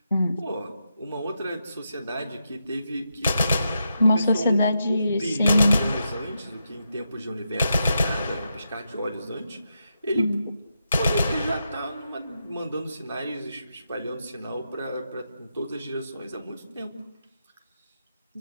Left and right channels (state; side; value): inverted; both; correlation -0.85